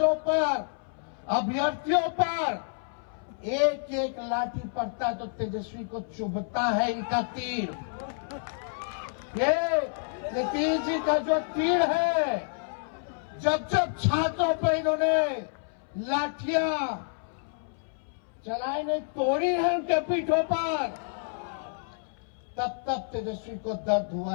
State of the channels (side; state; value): right; silent; 59 dB below the other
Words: पर, अभ्यर्थियों पर एक एक लाठी पड़ता है तो तेजस्वी को चुभता है इनका तीर। ये नीतीश जी का जो तीर है, जब जब छात्रों पर इन्होंने लाठियां चलाई नहीं, तोड़ी है उनके पीठों पर, तब तब तेजस्वी को दर्द हुआ